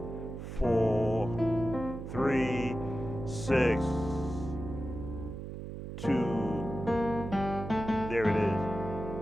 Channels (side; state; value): right; noise; hum, 8 dB below the sound